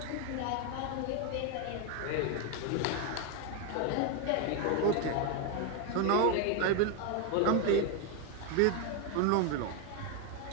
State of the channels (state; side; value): different; both; correlation 0.02